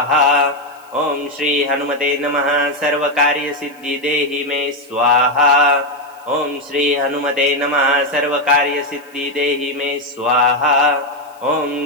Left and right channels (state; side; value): noise; left; hiss, 29 dB below the sound